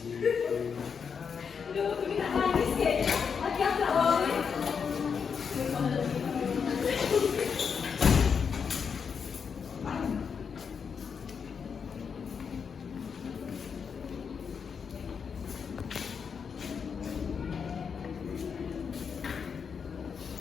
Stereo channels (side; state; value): right; quieter; 6.4 dB